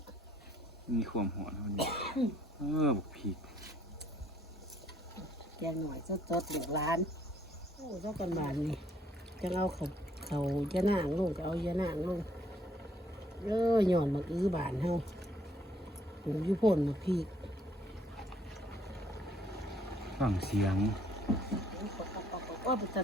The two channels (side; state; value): both; normal; correlation 0.65